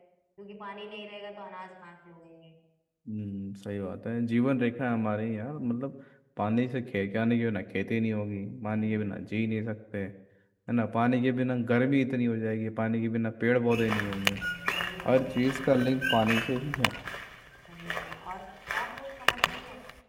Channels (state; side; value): identical; both; correlation 1.00